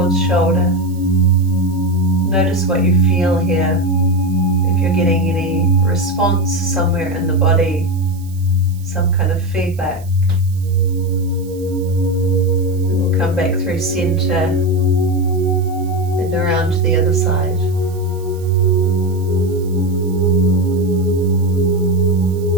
shoulder. Notice what you feel here. If you're getting any response somewhere in the body, some kind of feedback. We'll come back through center and around to the other side.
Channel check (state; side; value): noise; right; hiss, 24 dB below the sound